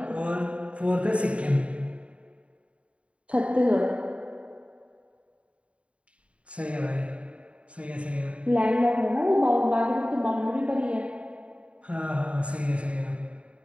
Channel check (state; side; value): late; left; 0.061 ms